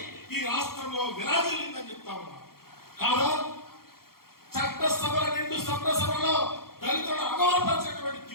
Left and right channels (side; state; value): right; late; 0.93 ms